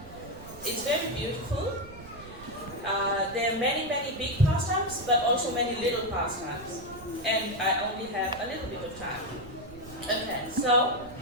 it's very beautiful. There are many big pastimes, but also many little pastimes, and I only have a little bit of time. Okay, so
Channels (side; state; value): right; noise; rumble, 16 dB below the sound